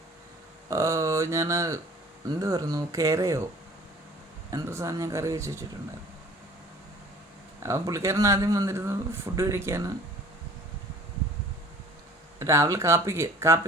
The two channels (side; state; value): both; normal; correlation 0.49